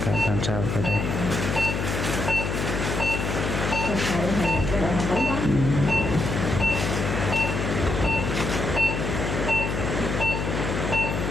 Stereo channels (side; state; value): left; noise; hum, 2 dB below the sound